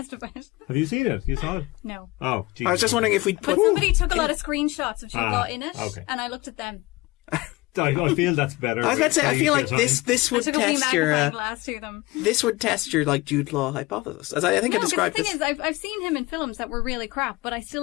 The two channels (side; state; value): right; quieter; 21.1 dB